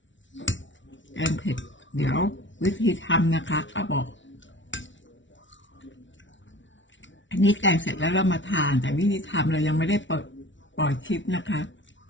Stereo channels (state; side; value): late; right; 0.55 ms